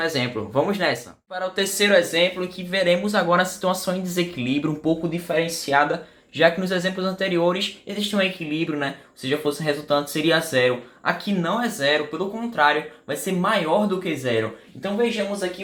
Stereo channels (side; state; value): both; identical; correlation 1.00